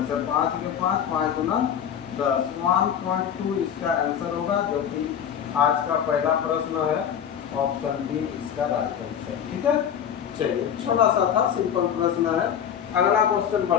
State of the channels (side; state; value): right; quieter; 8.7 dB